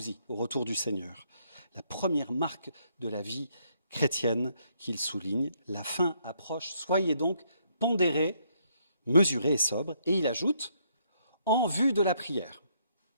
au retour du Seigneur. La première marque de la vie chrétienne qu'il souligne, la fin approche, soyez donc pondérés, mesurés et sobres. Et il ajoute, en vue de la prière.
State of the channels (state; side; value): inverted; both; correlation -0.72